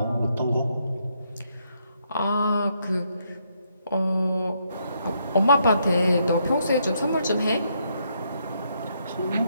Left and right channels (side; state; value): both; inverted; correlation -0.75